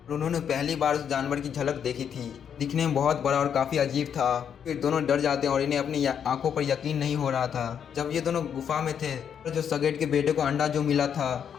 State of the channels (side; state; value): right; quieter; 8.1 dB